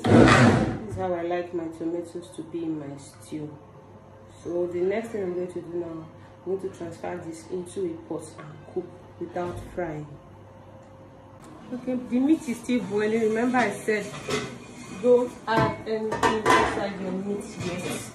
This is how I like my tomatoes to be in my stew. So the next thing I'm going to do now, I'm going to transfer this into a pot and cook without frying. Okay, the meat is still boiling. Remember I said don't add anything inside your meat yet.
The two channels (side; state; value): both; identical; correlation 1.00